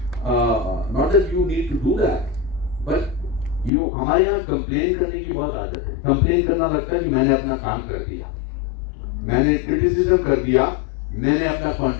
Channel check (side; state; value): right; drops out; at 3.7 s